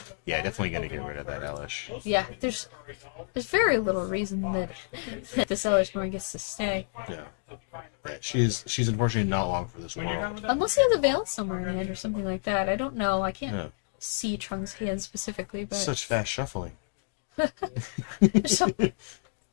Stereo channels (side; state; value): right; silent; digital silence